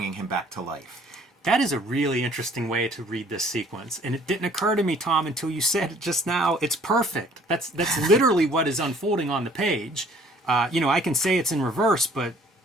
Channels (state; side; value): normal; both; correlation 0.57